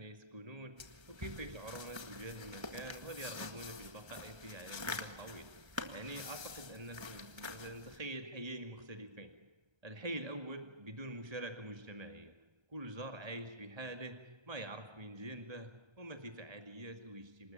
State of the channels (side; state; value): left; late; 1.3 ms